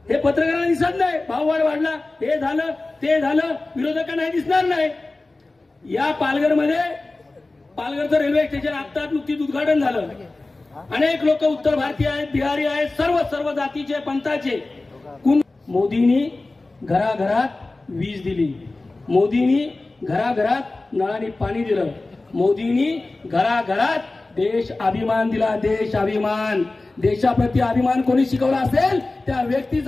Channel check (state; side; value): quieter; right; 3.2 dB